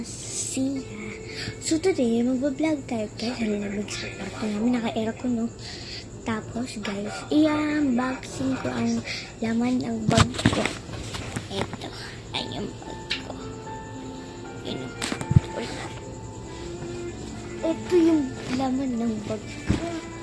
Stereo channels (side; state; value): both; identical; correlation 1.00